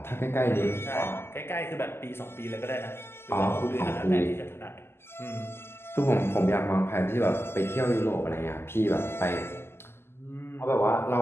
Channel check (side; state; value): right; late; 0.12 ms